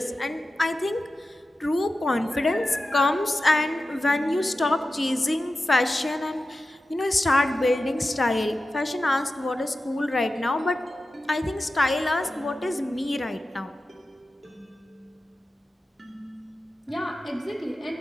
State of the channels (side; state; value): both; normal; correlation 0.94